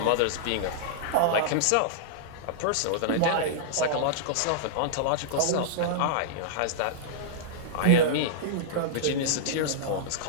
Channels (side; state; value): both; different; correlation -0.02